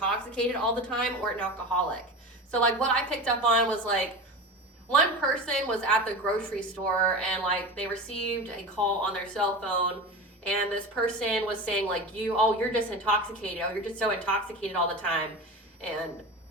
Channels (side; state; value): both; normal; correlation 0.28